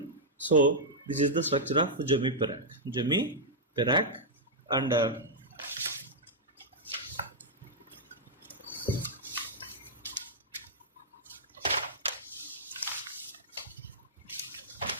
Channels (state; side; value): normal; both; correlation -0.07